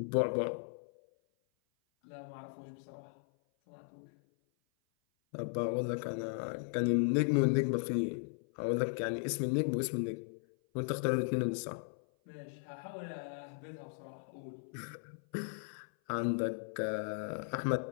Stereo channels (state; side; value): silent; right; 53 dB below the other